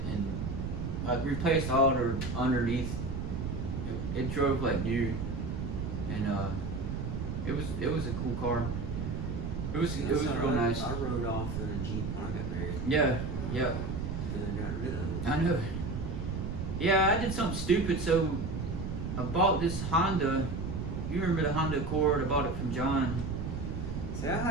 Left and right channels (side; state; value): right; noise; rumble, 4 dB below the sound